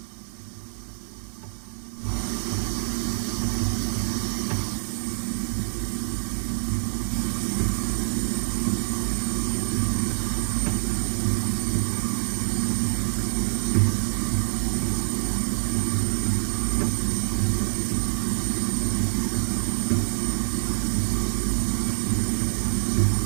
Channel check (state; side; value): silent; left; 61 dB below the other